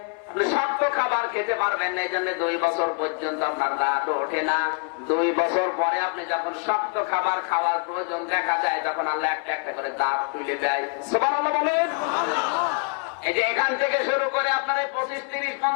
আপনি শক্ত খাবার খেতে পারবেন না, এই জন্য 2 বছর পর্যন্ত আপনার দাঁত ওঠে না। 2 বছর পরে আপনি যখন শক্ত খাবার খাওয়ার প্রয়োজন দেখা যায় তখন আল্লাহ একটা একটা করে দাঁত তুলে দেয়। সুবহানাল্লাহ বলেন। এই যে এখান থেকে শুরু করে আপনার 25, 30,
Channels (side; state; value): right; quieter; 39.6 dB